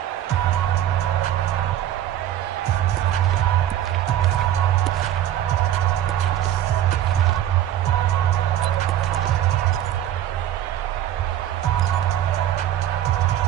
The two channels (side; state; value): left; quieter; 11.7 dB